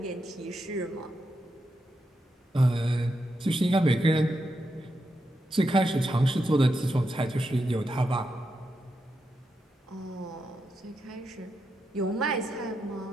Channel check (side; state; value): both; normal; correlation 0.85